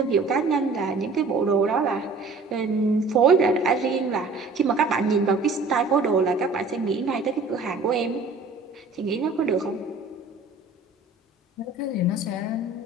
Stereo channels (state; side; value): quieter; left; 3.7 dB